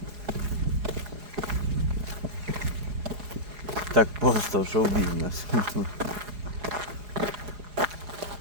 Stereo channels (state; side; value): late; left; 4.8 ms